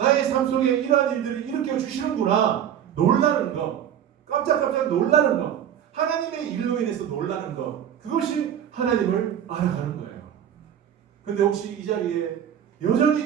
삶 속에 이러한 일들을 일으켜 주시는구나. 놀라는 것, 깜짝깜짝 놀라는 것, 하나님의 일로 인해서 놀라는 것, 그것이 하나님을 알아가는 거예요. 근데 혹시 이 자리에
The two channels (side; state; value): left; quieter; 9.7 dB